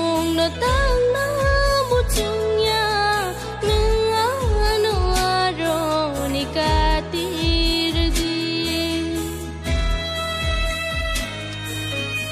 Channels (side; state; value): both; identical; correlation 1.00